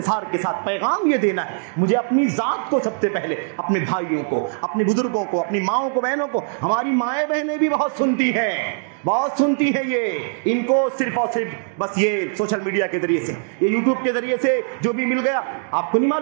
کے ساتھ پیغام یہ دینا ہے، مجھے اپنی ذات کو سب سے پہلے، اپنے بھائیوں کو، اپنے بزرگوں کو، اپنی ماؤں کو، بہنوں کو، ہماری مائیں بہنیں بھی بہت سنتی ہیں، بہت سنتی ہیں۔ یہ ان کو صرف اور صرف بس یہ سوشل میڈیا کے ذریعے سے، یہ یوٹیوب کے ذریعے سے جو بھی مل گیا، آپ کو نہیں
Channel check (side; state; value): left; silent; digital silence